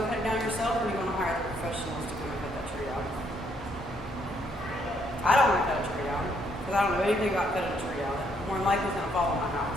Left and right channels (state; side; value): normal; both; correlation 0.71